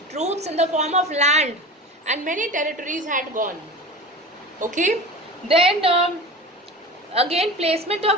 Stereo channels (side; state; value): both; normal; correlation 0.33